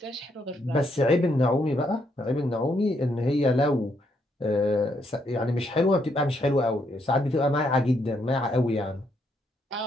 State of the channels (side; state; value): both; normal; correlation 0.75